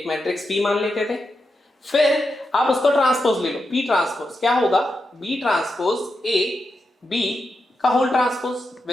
मैट्रिक्स पी मान लेते थे, फिर आप उसको ट्रांसपोज ले लो, पी ट्रांसपोज क्या होगा, बी ट्रांसपोज ए बी का whole transpose,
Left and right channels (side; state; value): both; normal; correlation 0.87